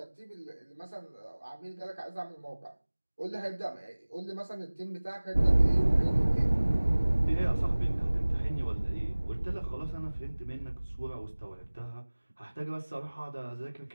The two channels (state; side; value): inverted; both; correlation -1.00